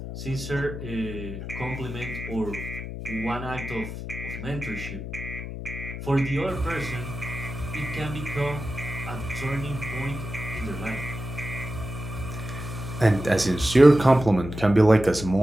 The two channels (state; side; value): noise; left; hum, 8 dB below the sound